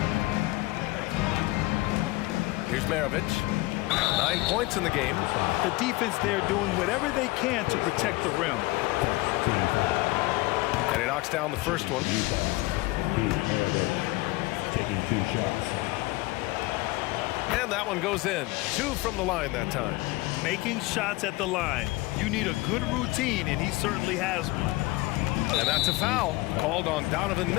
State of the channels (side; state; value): right; quieter; 21.3 dB